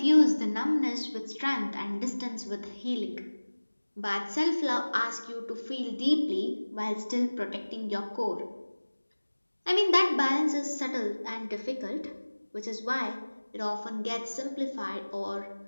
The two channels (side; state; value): both; inverted; correlation -1.00